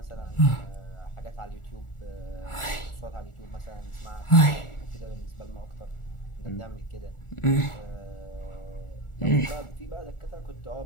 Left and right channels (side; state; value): right; late; 1.4 ms